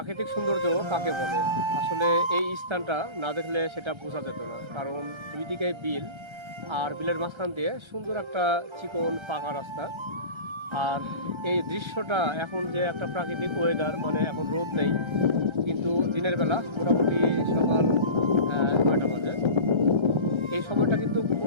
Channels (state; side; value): late; left; 1.3 ms